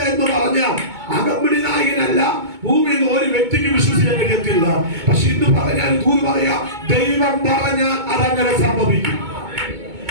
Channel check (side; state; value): left; late; 2.2 ms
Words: എന്ന് പറഞ്ഞാൽ അകമ്പടി നായകനല്ല, ഭൂമിയിൽ ഒരു വ്യക്തിക്ക് വിശ്വസിക്കാൻ കഴിയത്തില്ല. പക്ഷെ ഇന്ന് പറഞ്ഞാൽ ദൂത് പറയാ, ദൈവം പറഞ്ഞാൽ അതങ്ങനെ സംഭവിക്കും.